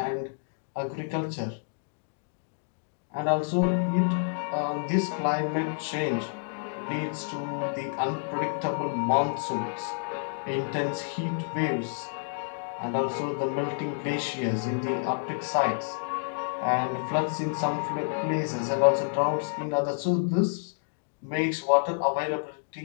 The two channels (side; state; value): right; silent; digital silence